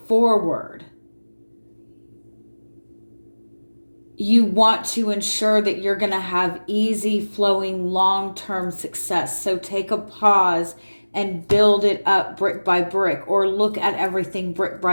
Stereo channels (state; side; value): inverted; both; correlation -1.00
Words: forward. You want to ensure that you're going to have easy flowing long-term success. So take a pause and build it up brick by brick, or look at everything brick